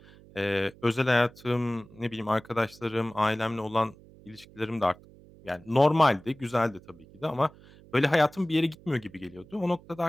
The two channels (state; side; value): noise; right; hum, 23 dB below the sound